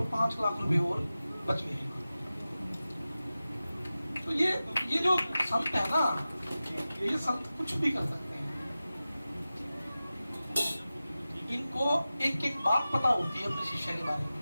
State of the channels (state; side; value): inverted; both; correlation -0.95